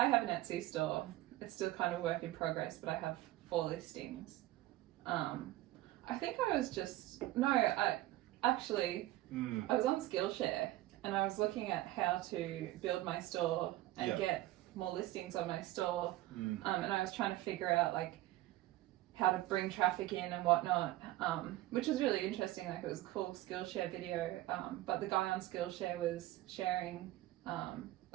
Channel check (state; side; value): quieter; left; 16.4 dB